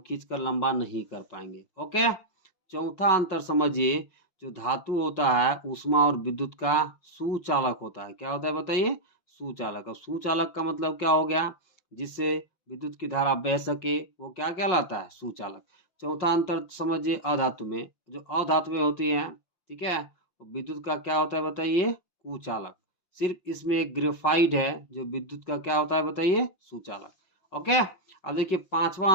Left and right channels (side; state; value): right; late; 5.4 ms